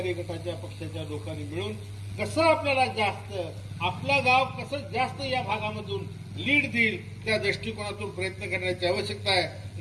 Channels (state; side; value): identical; both; correlation 1.00